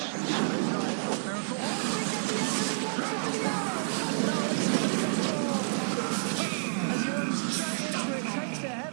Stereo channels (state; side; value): silent; left; digital silence